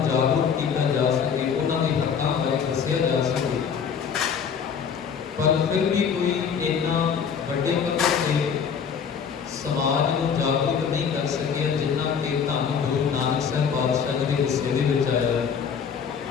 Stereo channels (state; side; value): quieter; right; 6.9 dB